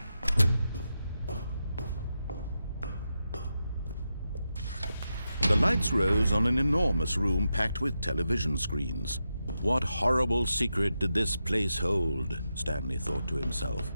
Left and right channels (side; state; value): both; inverted; correlation -0.88